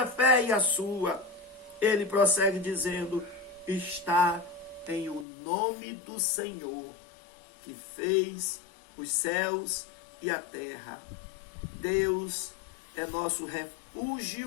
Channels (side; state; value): right; drops out; at 5.2 s